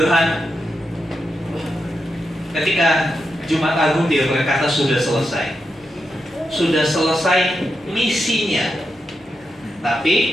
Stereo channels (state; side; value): normal; both; correlation 0.86